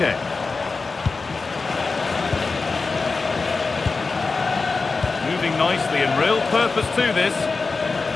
Moving nicely and real purpose to this.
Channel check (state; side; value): quieter; right; 4.2 dB